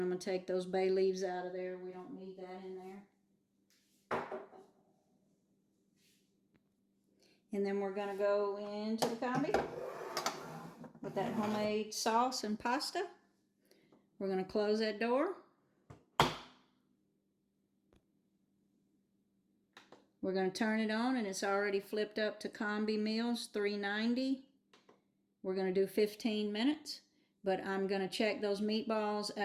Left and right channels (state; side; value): identical; both; correlation 1.00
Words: I'm going to take those bay leaves out of there. We don't need that in there. And then we're going to go into the combi with that homemade sauce and pasta. We're going to close that door. We're going to turn it on, and it's already flipped up to Combi Meals 390. We're going to do 15 minutes, but I'm going to check those meatballs